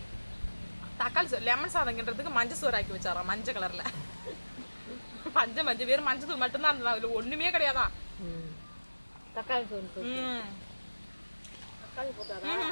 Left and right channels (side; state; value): both; inverted; correlation -1.00